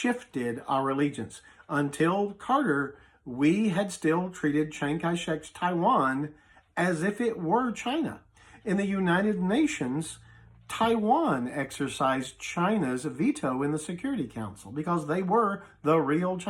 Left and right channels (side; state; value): both; identical; correlation 1.00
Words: our allegiance. Until Carter, we had still treated Chiang Kai-shek's Taiwan as if it were China. In the United Nations, Taiwan exercised China's veto in the Security Council because they were the real